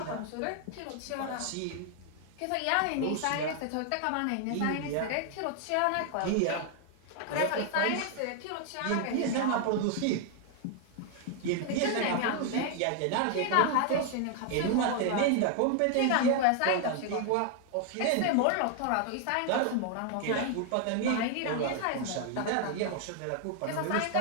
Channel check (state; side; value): different; both; correlation 0.00